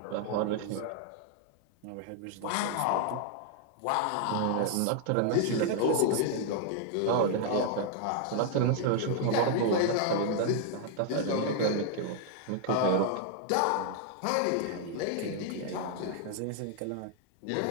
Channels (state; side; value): different; both; correlation 0.00